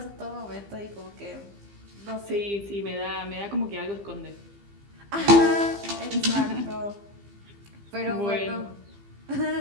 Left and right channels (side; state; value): left; late; 15 ms